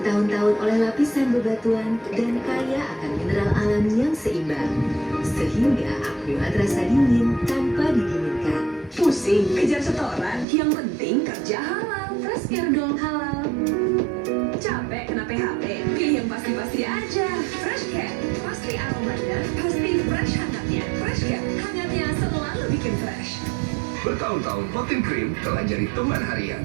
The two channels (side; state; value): left; drops out; at 10.5 s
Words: oleh lapisan bebatuan, dan kaya akan mineral alami yang seimbang. Sehingga aqua terasa dingin tanpa didinginkan. Pusing, kejar setoran. Yang penting kerja halal. Fresh Care dong halal. Capek kena PHP? Pilih yang pasti-pasti aja. Fresh Care. Pasti aromanya, pasti fresh hangatnya. Fresh Care, hangatnya selalu bikin fresh. Bertahun-tahun, Hotin Cream telah jadi teman